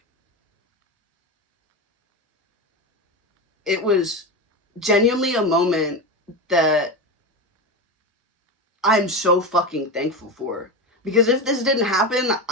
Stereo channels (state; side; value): normal; both; correlation 0.19